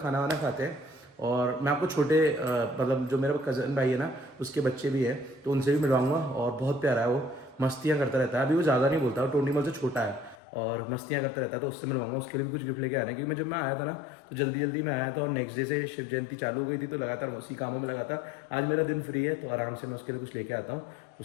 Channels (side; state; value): right; drops out; at 10.4 s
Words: वाना खाते हैं। और मैं आपको छोटे मतलब जो मेरा कज़न भाई है ना, उसके बच्चे भी हैं, तो उनसे भी मिलवाऊंगा। और बहुत प्यारा है वो, मस्तियाँ करता रहता है। अभी वो ज़्यादा नहीं बोलता, वो टोनी मल से छोटा है और मस्तियाँ करता रहता है, तो उससे मिलवाऊंगा। उसके लिए भी कुछ गिफ्ट लेके आना है, क्योंकि जब मैं आया था ना तो जल्दी जल्दी में आया था, और नेक्स्ट डे से शिव जयंती चालू हो गई थी, तो लगातार उसी कामों में लगा था। आज मेरा दिन फ्री है, तो आराम से मैं उसके लिए कुछ लेके आता हूँ,